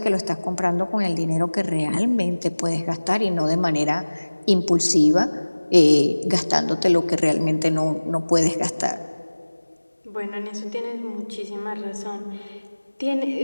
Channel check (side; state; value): both; inverted; correlation -1.00